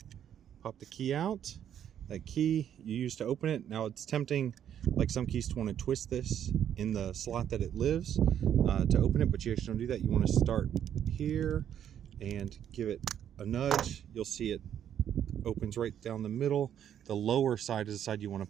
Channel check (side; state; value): left; quieter; 9.7 dB